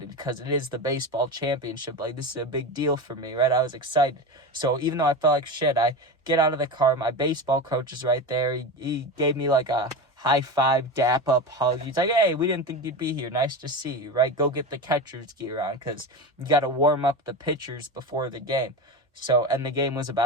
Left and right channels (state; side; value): normal; both; correlation 0.24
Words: because it is the baseball championship. Like, this is a big deal for me, right? I was excited. So even though I felt like shit, I get out of the car. My baseball coach is right there. He gave me like a high five, dap up hug. He's like, hey, we didn't think you'd be here. Nice to see you, right? Go get the catcher's gear on because you got to warm up the pitchers before the game. So, and the game was